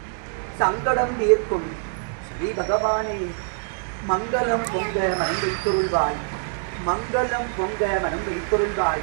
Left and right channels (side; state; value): left; silent; 62 dB below the other